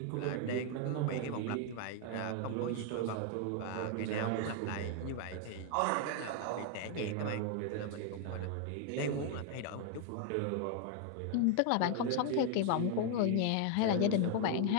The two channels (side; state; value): both; different; correlation 0.00